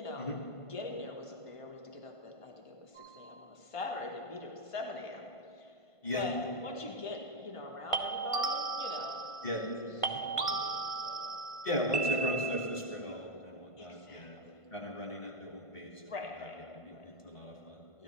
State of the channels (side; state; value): right; late; 1.5 ms